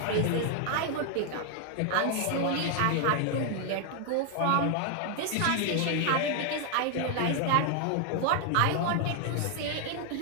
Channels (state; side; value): different; both; correlation 0.00